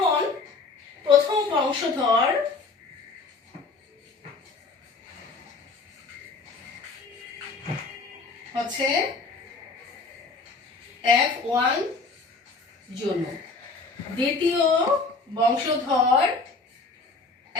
প্রথম বংশধর হচ্ছে F1 জনু, দ্বিতীয় বংশধর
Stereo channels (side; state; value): right; quieter; 4.1 dB